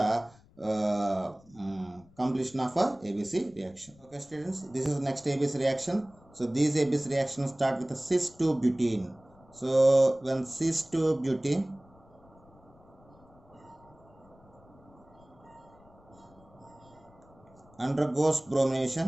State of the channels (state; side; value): noise; left; rumble, 27 dB below the sound